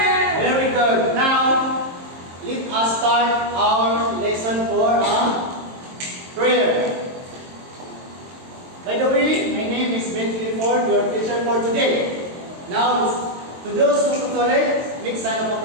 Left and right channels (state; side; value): late; left; 22 ms